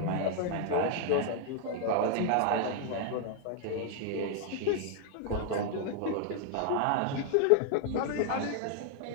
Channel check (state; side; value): different; both; correlation 0.00